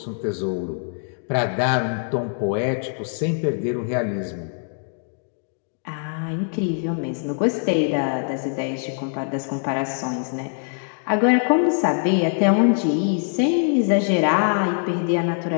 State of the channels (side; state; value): right; silent; 63 dB below the other